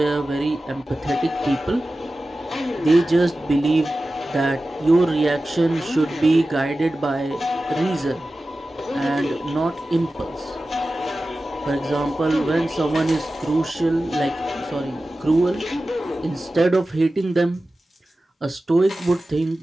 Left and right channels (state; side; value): normal; both; correlation 0.95